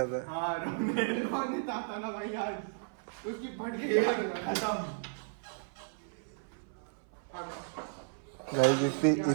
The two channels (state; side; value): silent; left; 55 dB below the other